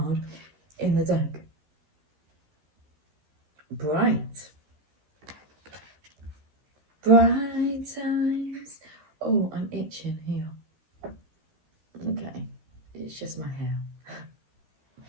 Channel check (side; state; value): left; late; 14 ms